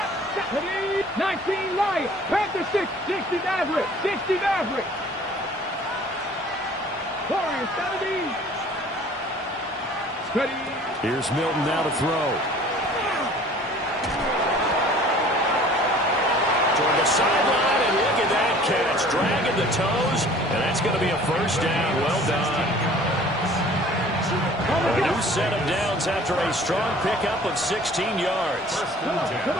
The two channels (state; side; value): normal; both; correlation 0.50